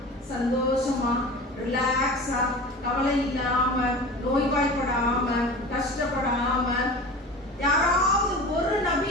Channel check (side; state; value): both; normal; correlation 0.35